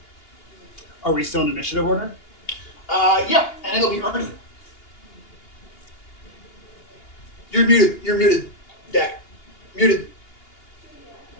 Are we still in initiative order? Yeah, and it'll be Ernie. You're muted, Dak. Muted.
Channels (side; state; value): right; late; 2.8 ms